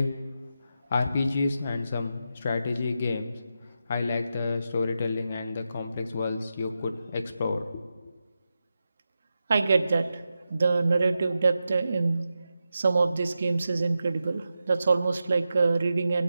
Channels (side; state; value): both; inverted; correlation -0.89